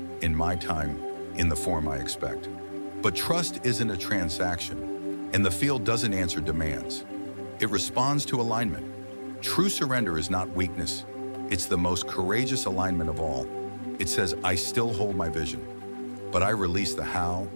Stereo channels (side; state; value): both; inverted; correlation -1.00